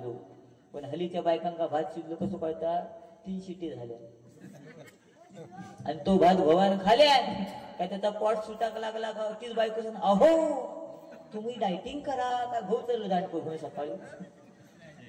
पण हलीच्या बायकांका भात शिजलो कसं कळता 3 शिटी झाल्या आणि तो भात भवान खाल्या काय त्याचा पोट सुटाक लागला का तीच बायको सांग अहो तुम्ही डायटिंग करा का भाऊ चाललो दांडको घेऊन सकाळी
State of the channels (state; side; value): identical; both; correlation 1.00